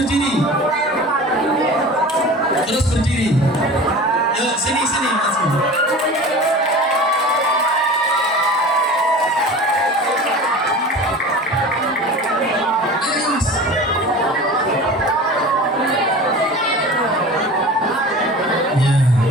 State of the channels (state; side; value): normal; both; correlation 0.37